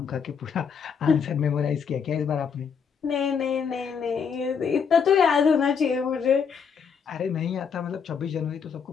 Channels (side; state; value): right; quieter; 6.5 dB